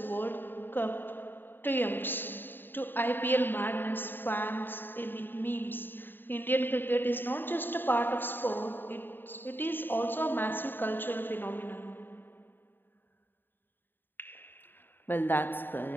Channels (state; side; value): late; right; 0.095 ms